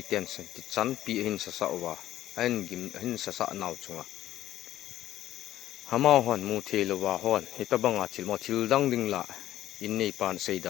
ten sen ti chan pi hin sa sa wa an gim hin sa sa naw chunga hama hon mu thelo wa hon heta banga thil mo thil dang ding la in nei pan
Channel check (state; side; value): quieter; right; 13.3 dB